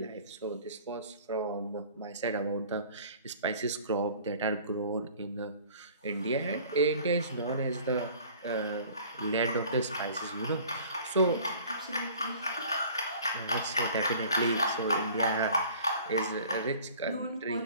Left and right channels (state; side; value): inverted; both; correlation -0.48